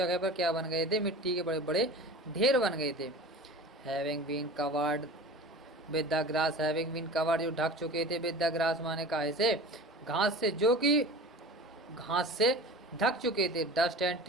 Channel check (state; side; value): normal; both; correlation 0.37